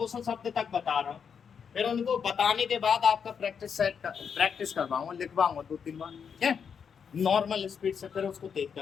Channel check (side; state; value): right; quieter; 6.9 dB